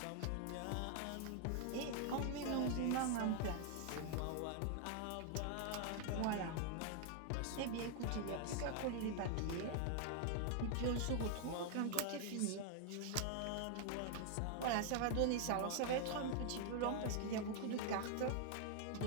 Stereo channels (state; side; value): different; both; correlation 0.00